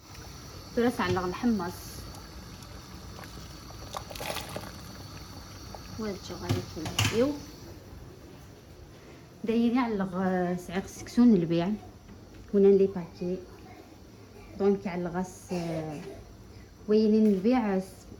تولى تعلق الحمص وهادشي غادي كنبديو دايرين علق سعيق السكسون للبيع هنا لي باكي دونك علغاس وينين البيع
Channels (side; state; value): both; identical; correlation 1.00